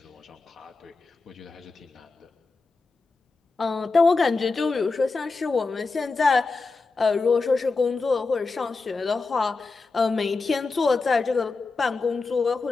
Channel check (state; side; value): quieter; right; 4.0 dB